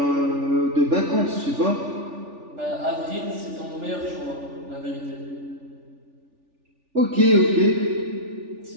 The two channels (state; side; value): late; left; 3.4 ms